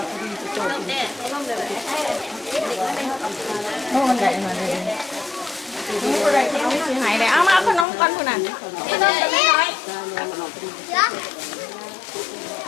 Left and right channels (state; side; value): drops out; right; at 7.9 s